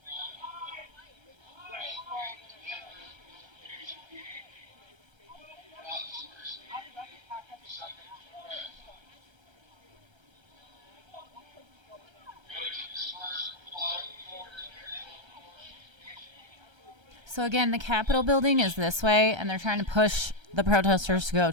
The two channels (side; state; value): left; late; 1.3 ms